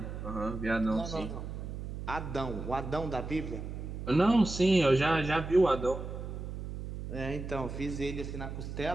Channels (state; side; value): noise; right; hum, 7 dB below the sound